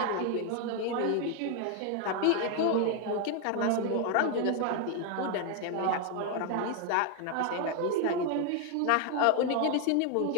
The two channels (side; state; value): both; different; correlation 0.01